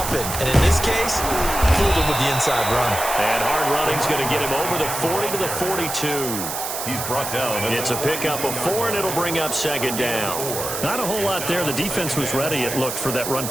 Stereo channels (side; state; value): right; noise; hiss, 5 dB below the sound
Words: And in this case, fooled them with the inside run. And hard running's going to get him over the 40 to the 42. He's brought down. It's a pickup of 4, and it'll bring up 2nd down. Not a whole lot there. The defense was ready, it looked, for that